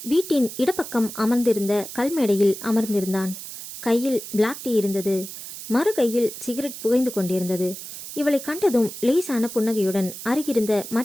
வீட்டின் இடப்பக்கம் அமர்ந்திருந்த கல்மேடையில் அமர்ந்திருந்தான். கையில் பிளாக் டீ இருந்தது. மறு கையில் சிகரெட் புகைந்து கொண்டிருந்தது. இவளை கண்டதும் லேசான புன்னகையுடன் அருகிருந்த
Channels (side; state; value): right; noise; hiss, 11 dB below the sound